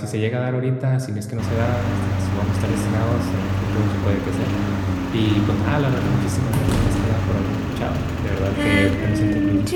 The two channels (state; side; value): identical; both; correlation 1.00